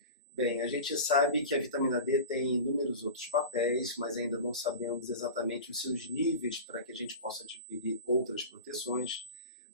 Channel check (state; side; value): inverted; both; correlation -0.31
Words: Bem, a gente sabe que a vitamina D tem inúmeros outros papéis, mas ainda não sabemos exatamente os seus níveis para que a gente possa adquirir outras proteções.